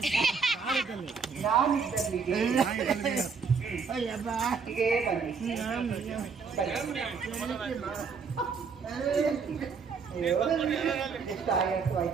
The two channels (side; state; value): left; quieter; 5.5 dB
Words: ನಾನಿದ್ದಲ್ಲಿಗೆ ಅಯ್ಯಬ್ಬ ಹೀಗೆ ಬನ್ನಿ ಎಷ್ಟು ಆಯಾಸು